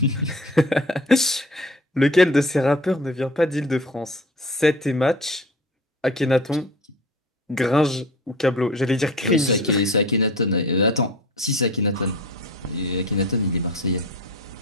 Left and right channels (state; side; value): normal; both; correlation 0.41